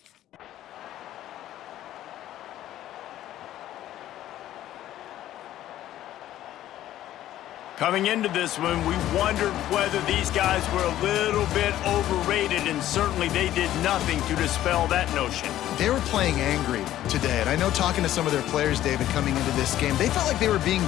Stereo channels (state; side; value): quieter; right; 13.1 dB